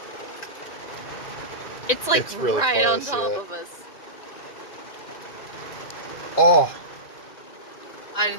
It's like It's really right on close, top yeah. of us. Oh, I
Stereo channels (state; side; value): late; right; 1.9 ms